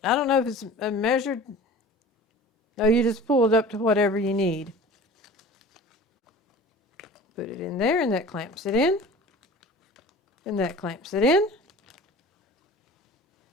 I don't know if it's a measured. No, you just pull it up to whatever you need. Put it in there and that clamps it in. And that clamps it in.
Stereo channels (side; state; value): both; normal; correlation 0.41